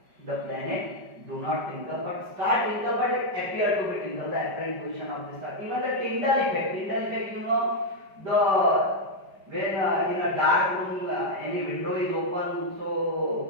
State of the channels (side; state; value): left; late; 5.1 ms